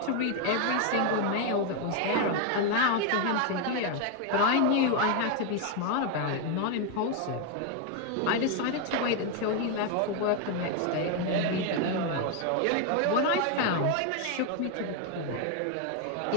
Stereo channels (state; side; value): different; both; correlation 0.01